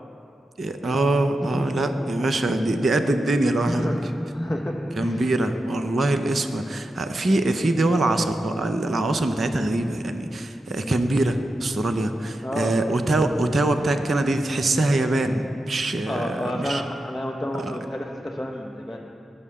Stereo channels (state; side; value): normal; both; correlation 0.89